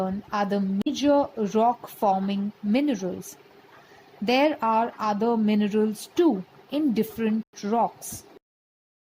are the major rock-forming minerals. There are other minerals too in different rocks.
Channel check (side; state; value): both; identical; correlation 1.00